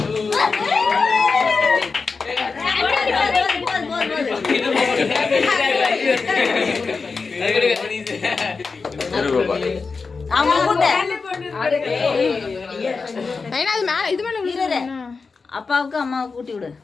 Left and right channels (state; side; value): quieter; right; 4.6 dB